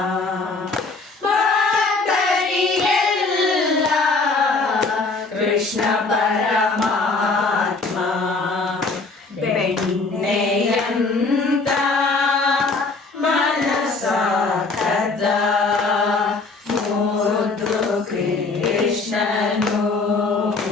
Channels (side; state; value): right; quieter; 3.8 dB